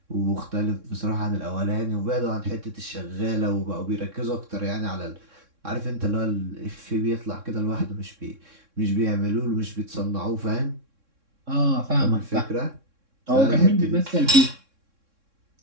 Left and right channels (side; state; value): left; late; 3.6 ms